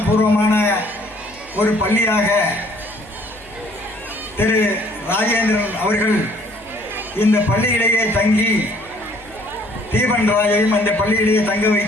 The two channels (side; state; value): left; noise; hum, 25 dB below the sound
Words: ஒரு பள்ளியாக திரு ராஜேந்திரன் அவர்கள் இந்த பள்ளியிலேயே தங்கி தீபன்ராஜையும் அந்த பள்ளியிலேயே தங்க